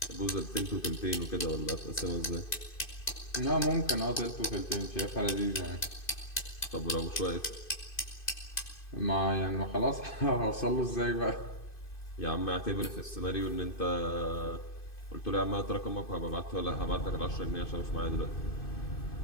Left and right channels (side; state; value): right; late; 2.5 ms